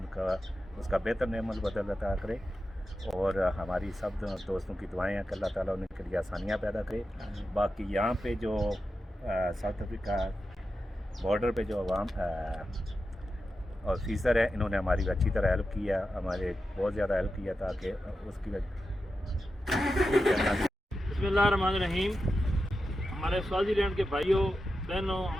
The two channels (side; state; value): both; normal; correlation 0.90